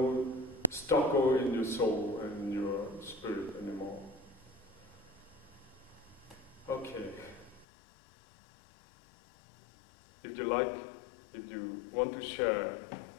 struggle in your soul and your spirit anymore. Okay. If you like, if you want to share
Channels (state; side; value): drops out; right; at 7.7 s